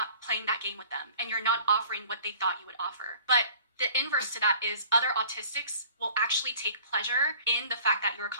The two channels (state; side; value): inverted; both; correlation -0.48